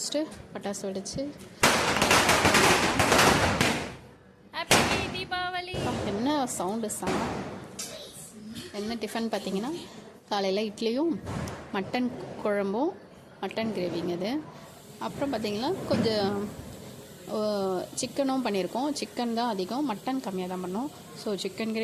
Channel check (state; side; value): identical; both; correlation 1.00